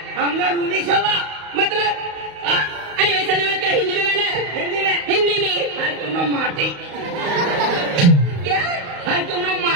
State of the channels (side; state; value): left; late; 35 ms